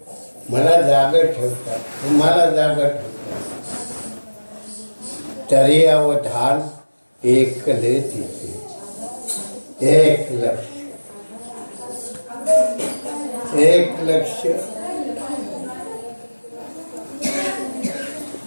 मला जागा ठेवतात, तुम्हाला जागा ठेवतात. तरी अवधान एकले तिथे. एक लक्ष, एक लक्ष,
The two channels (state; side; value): inverted; both; correlation -1.00